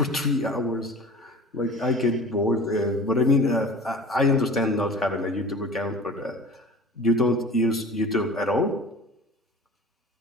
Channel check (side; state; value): both; normal; correlation 0.41